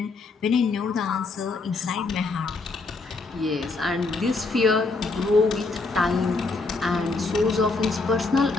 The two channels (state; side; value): quieter; right; 3.7 dB